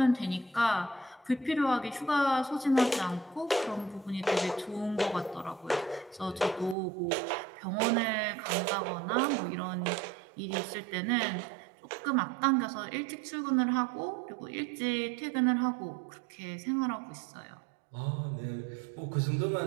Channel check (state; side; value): drops out; left; at 6.8 s